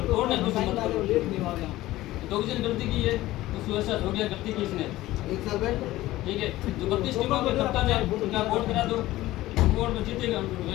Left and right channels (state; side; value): quieter; right; 16.7 dB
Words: तोड़ने कुछ मत करो। 2 जन गलती की है तो उसको ऐसा हो गया गलती की इसने ठीक है। जो 32 टीमों के कप्तान है उनका बोर्ड करा दो, बोर्ड में जीतेगा